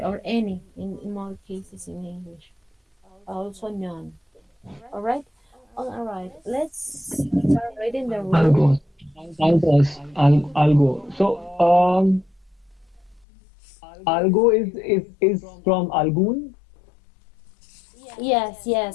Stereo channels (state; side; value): drops out; right; at 13.2 s